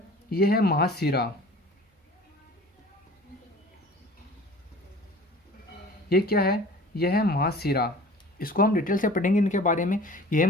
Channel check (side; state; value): both; normal; correlation 0.44